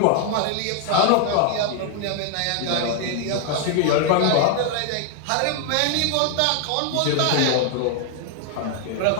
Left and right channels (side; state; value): both; different; correlation 0.00